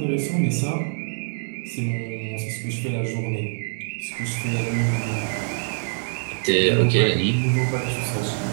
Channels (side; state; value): left; silent; digital silence